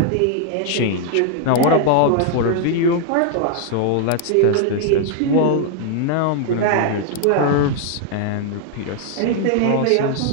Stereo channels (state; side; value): different; both; correlation 0.00